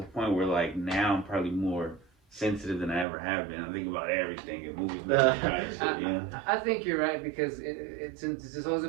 point where like now I'm probably more sensitive than I ever have been. I think about everything and movies. I think you're right because it's this whole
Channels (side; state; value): left; drops out; at 3.1 s